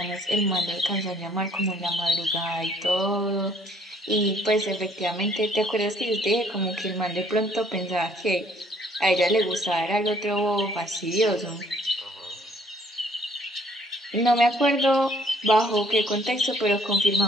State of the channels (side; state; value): both; normal; correlation 0.61